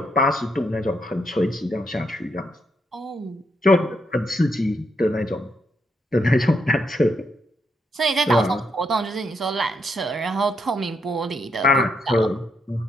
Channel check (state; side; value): normal; both; correlation 0.78